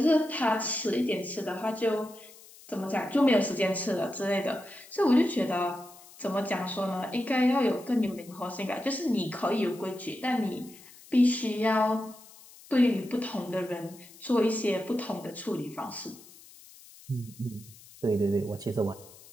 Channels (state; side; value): noise; left; hiss, 21 dB below the sound